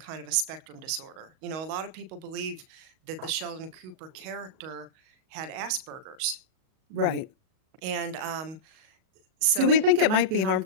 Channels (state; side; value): late; left; 37 ms